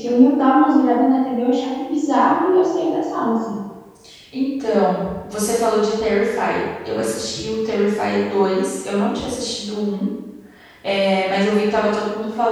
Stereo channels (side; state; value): both; identical; correlation 1.00